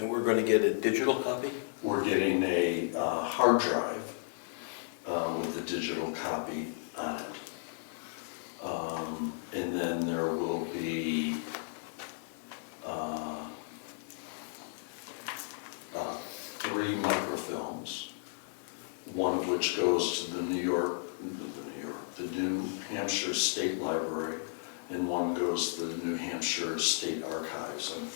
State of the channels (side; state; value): right; silent; digital silence